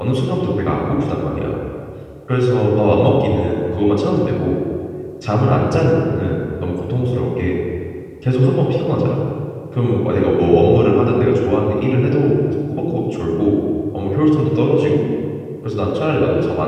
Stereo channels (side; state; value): both; identical; correlation 1.00